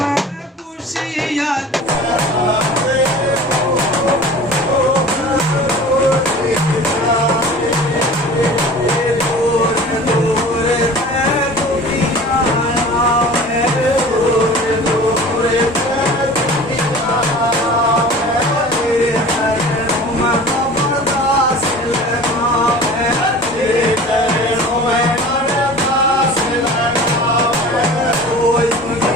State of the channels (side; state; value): both; normal; correlation 0.41